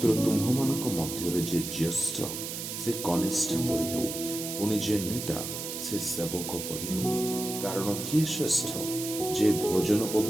ତୁମ୍ଭମାନଙ୍କ ମଧ୍ୟରେ ଯେ ଜ୍ୟେଷ୍ଠ, ସେ କନିଷ୍ଠ ପରି ହେଉ। ପୁଣି ଯେ ନେତା, ସେ ସେବକ ପରି ହେଉ। କାରଣ କିଏ ଶ୍ରେଷ୍ଠ, ଯେ ଭୋଜନ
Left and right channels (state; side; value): noise; right; hiss, 6 dB below the sound